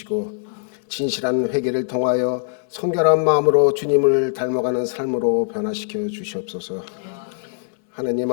진실한 회개를 통하여 성결한 마음으로 주님을 닮아가는 삶으로 변화시켜 주시옵소서. 하나님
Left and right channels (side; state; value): right; silent; 65 dB below the other